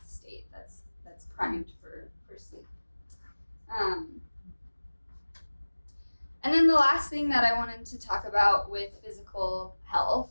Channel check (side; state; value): both; inverted; correlation -1.00